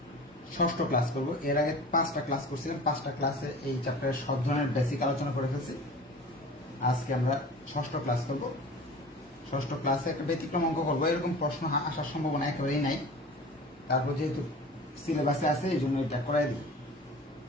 ষষ্ঠ ক্লাস করব। এর আগে 5টা ক্লাস করছিলাম, 5টা ক্লাসে এই চ্যাপ্টারের সব ধরনের বেসিক আলোচনা করে ফেলছি। আজকে আমরা ষষ্ঠ ক্লাস করব। ষষ্ঠ ক্লাসে একটা ব্যতিক্রম অঙ্ক করবো। এরকম প্রশ্ন আসার সম্ভাবনা একেবারেই নাই, তারপর যেহেতু সিলেবাসে আছে এই জন্য এটা করাই দিই।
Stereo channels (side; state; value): both; normal; correlation 0.39